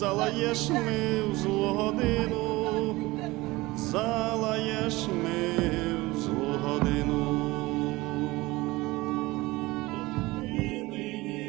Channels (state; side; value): quieter; left; 20.7 dB